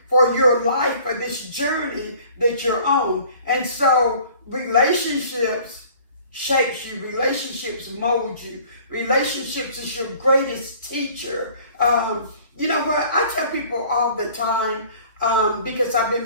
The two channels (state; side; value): inverted; both; correlation -0.51